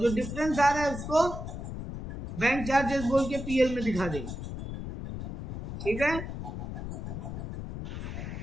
डिफरेंस आ रहा है उसको बैंक चार्जेस बोल के पीएल में दिखा देंगे, ठीक है।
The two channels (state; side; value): noise; left; rumble, 7 dB below the sound